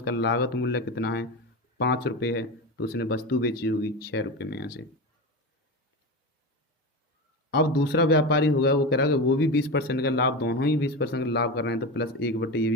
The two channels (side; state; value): both; normal; correlation 0.22